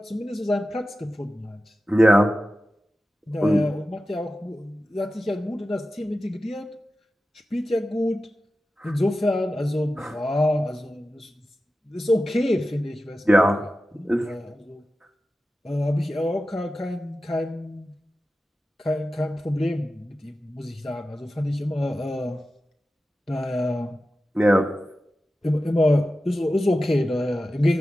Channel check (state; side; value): normal; both; correlation 0.93